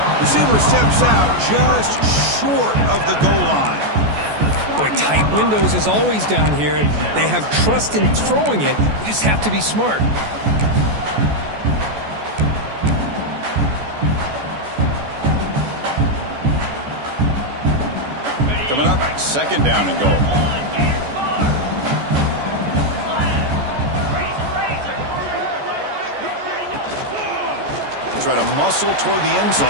receiver steps out just short of the goal line. Boy, tight windows is always down here. They have trust in throwing it. You just have to be smart. Coming up, second down and goal. Try to muscle toward the end zone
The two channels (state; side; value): late; left; 14 ms